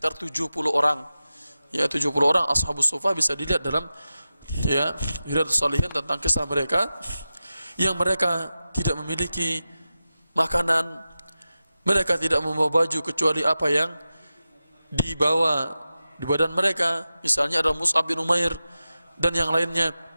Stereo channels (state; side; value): inverted; both; correlation -0.93